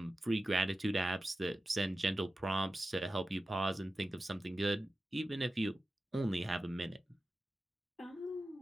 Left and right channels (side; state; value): both; normal; correlation 0.94